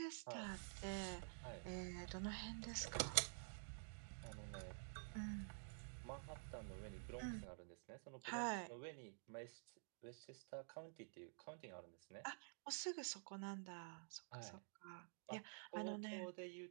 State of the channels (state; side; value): silent; left; digital silence